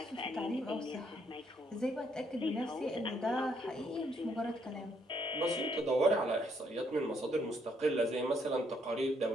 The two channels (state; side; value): normal; both; correlation 0.71